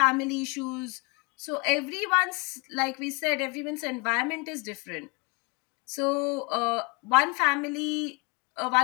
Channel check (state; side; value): quieter; right; 30.7 dB